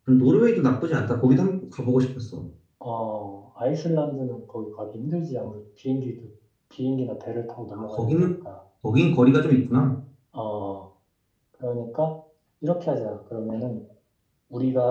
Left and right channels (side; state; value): both; identical; correlation 1.00